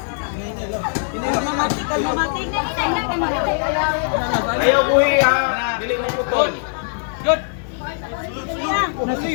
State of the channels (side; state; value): right; silent; digital silence